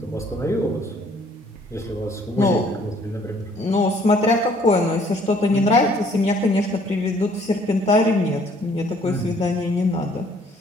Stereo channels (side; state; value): both; normal; correlation 0.60